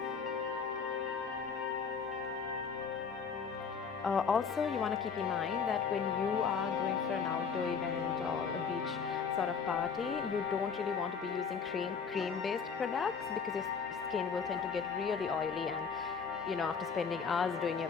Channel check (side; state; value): right; quieter; 6.0 dB